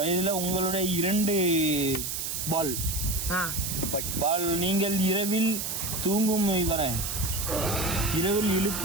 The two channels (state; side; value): noise; right; hiss, 3 dB below the sound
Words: உங்களுடைய 2 பால் நீங்கள் இரவில் தூங்கும் இரவில்